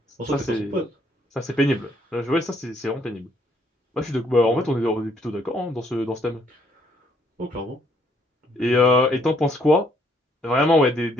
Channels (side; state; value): both; normal; correlation 0.68